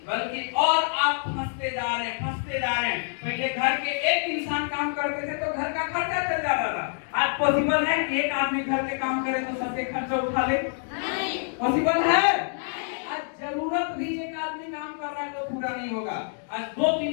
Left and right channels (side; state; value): right; silent; digital silence